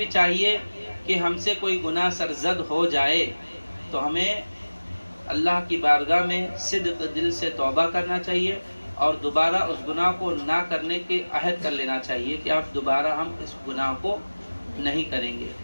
چاہیے کہ ہم سے کوئی گناہ سرزد ہو جائے تو ہمیں اللہ کی بارگاہ میں صدق دل سے توبہ کرنا چاہیے، اور دوبارہ اس گناہ کو نہ کرنے کے عہد کر لینا چاہیے کہ اب دوبارہ ہم اس گناہ کو نہیں کریں گے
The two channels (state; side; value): inverted; both; correlation -1.00